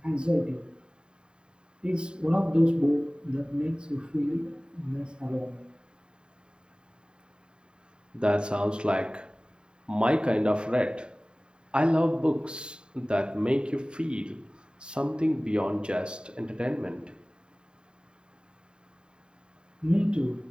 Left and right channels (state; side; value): late; left; 0.050 ms